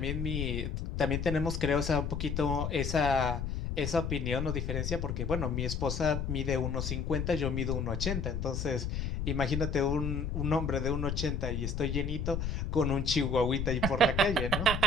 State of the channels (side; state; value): left; noise; rumble, 2 dB below the sound